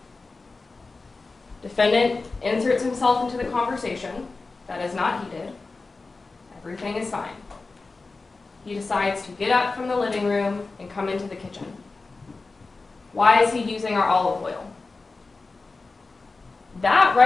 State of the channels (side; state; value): right; quieter; 3.8 dB